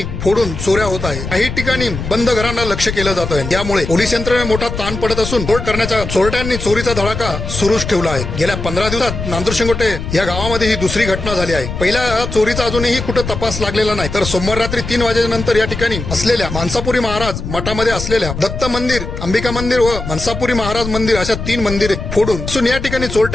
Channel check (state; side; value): noise; left; rumble, 6 dB below the sound